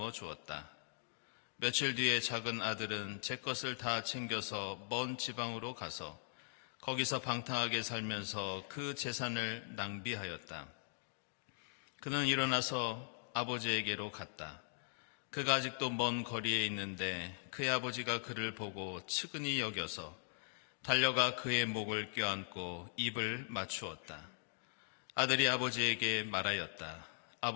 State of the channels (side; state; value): right; silent; digital silence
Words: 주었다. 며칠 뒤에 작은 아들은 제 것을 다 챙겨서 먼 지방으로 가서 거기서 방탕하게 살면서 그 재산을 낭비하였다. 그는 일어나서 아버지에게로 갔다. 그가 아직도 먼 거리에 있는데 그의 아버지가 그를 보고 측은히 여겨서 달려가 그의 목을 껴안고 입을 맞추었다. 아들이 아버지에게 말하였다.